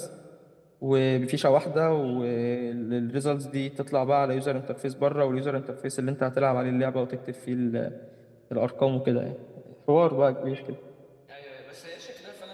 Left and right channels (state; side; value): identical; both; correlation 1.00